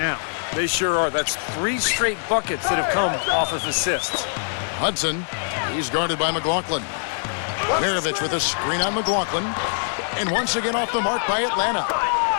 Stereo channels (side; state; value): right; silent; digital silence